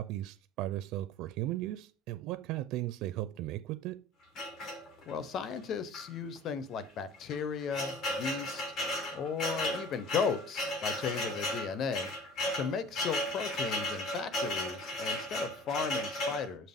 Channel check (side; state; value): both; normal; correlation 0.42